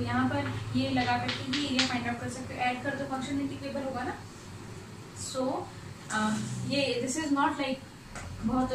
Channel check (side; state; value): both; identical; correlation 1.00